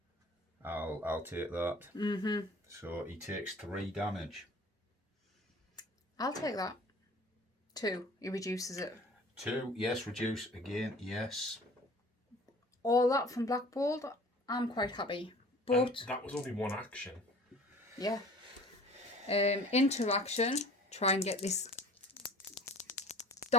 I'll take that. So he takes 3 damage. I'll take that. 2. He reduces it. 2, yes, reduce again, yes. All that from Black Bolt, I'm quite happy. And But, that was only 1 action. yeah. Interaction. Try and get this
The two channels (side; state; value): both; normal; correlation 0.45